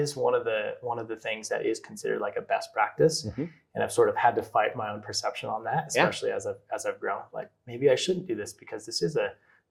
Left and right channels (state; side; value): identical; both; correlation 1.00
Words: one of the things that is considered like a best practice. And I've sort of had to fight my own perception on that, especially as I've grown. Like maybe I shouldn't do this because this is a